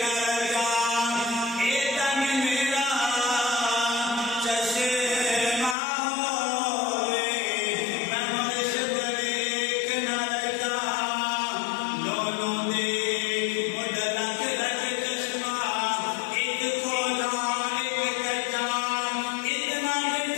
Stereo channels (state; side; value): drops out; right; at 5.8 s